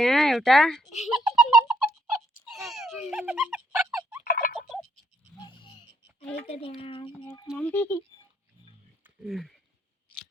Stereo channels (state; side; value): normal; both; correlation 0.70